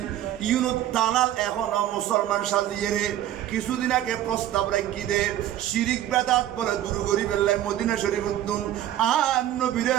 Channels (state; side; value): quieter; left; 12.5 dB